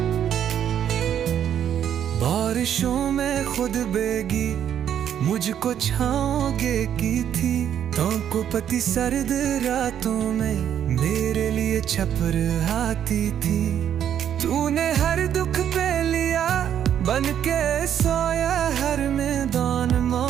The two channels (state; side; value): quieter; left; 9.6 dB